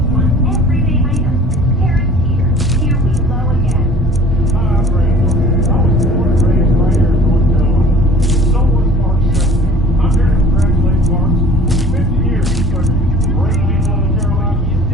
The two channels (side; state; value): both; normal; correlation 0.48